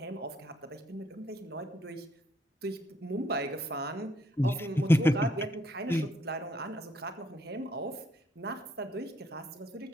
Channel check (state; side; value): normal; both; correlation 0.69